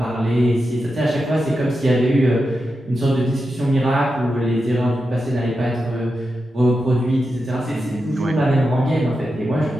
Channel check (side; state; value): both; normal; correlation 0.89